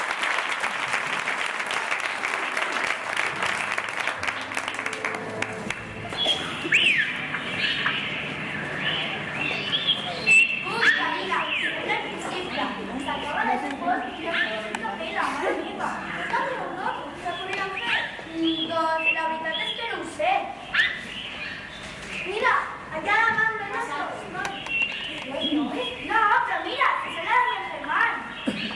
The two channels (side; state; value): both; identical; correlation 1.00